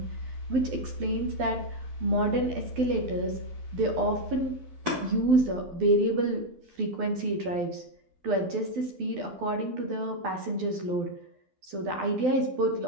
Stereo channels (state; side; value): late; left; 12 ms